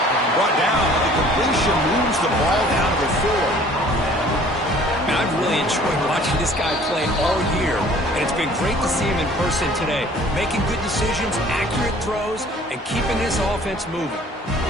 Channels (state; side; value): normal; both; correlation 0.52